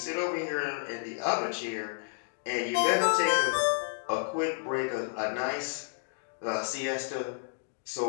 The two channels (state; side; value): silent; right; 57 dB below the other